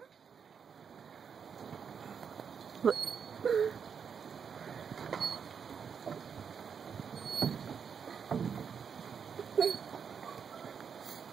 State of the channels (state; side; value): quieter; left; 6.8 dB